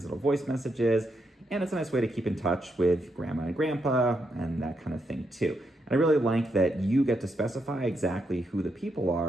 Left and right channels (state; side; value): normal; both; correlation 0.81